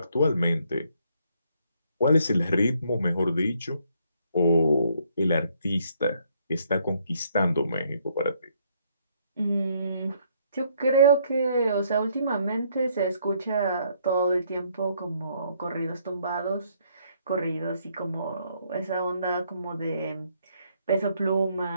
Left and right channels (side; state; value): both; inverted; correlation -0.69